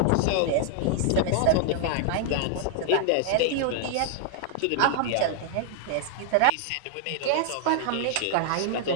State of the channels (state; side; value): different; both; correlation 0.00